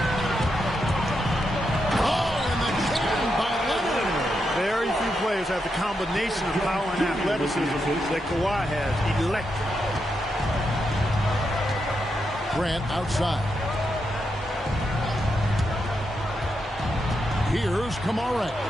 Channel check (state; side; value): normal; both; correlation 0.84